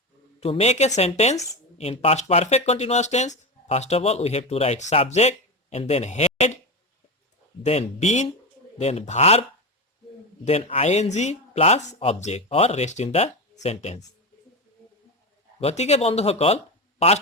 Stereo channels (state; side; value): normal; both; correlation 0.17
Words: to make a sentence in past perfect continuous tense, first of all we have to write subject and then head, then been, then verb, then ing plus object or rest in the sentence. গতিকে বন্ধুসকল,